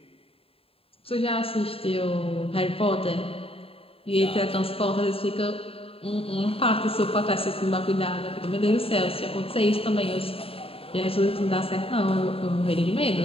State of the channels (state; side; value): late; right; 0.27 ms